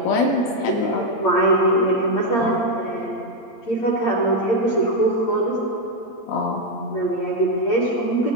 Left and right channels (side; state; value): right; late; 8.7 ms